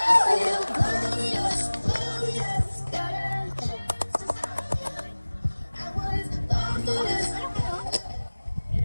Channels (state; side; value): inverted; both; correlation -1.00